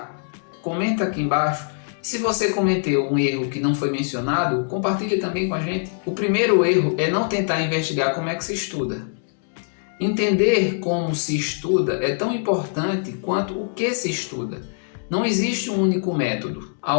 comenta aqui embaixo. Se você cometeu um erro que não foi mencionado, compartilhe também com a gente. O primeiro erro é não tentar investigar como é que se estuda. Entender como se estuda é tão importante quanto o que se estuda. Não existe um único método. Há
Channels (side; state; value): right; silent; digital silence